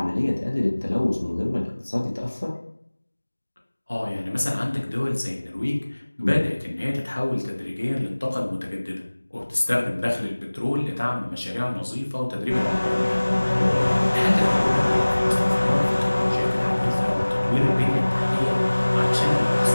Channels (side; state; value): both; inverted; correlation -1.00